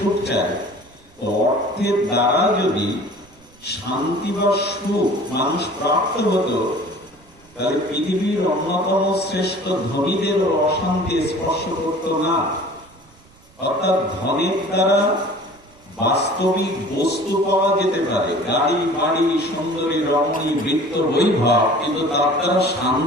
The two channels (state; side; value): noise; right; rumble, 28 dB below the sound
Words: চাই। অর্থের দ্বারা যদি শান্তি বা সুখ মানুষ প্রাপ্ত হতো, তাহলে পৃথিবীর অন্যতম শ্রেষ্ঠ ধনীদেরও অশান্তি স্পর্শ করত না। অর্থাৎ ধনের দ্বারা বাস্তবিক বস্তু পাওয়া যেতে পারে, গাড়ি, বাড়ি, সুন্দরী, রমণী, বৃত্ত, বৈভব, কিন্তু তার দ্বারা